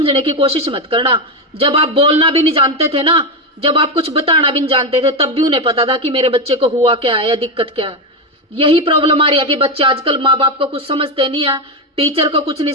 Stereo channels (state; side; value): normal; both; correlation 0.10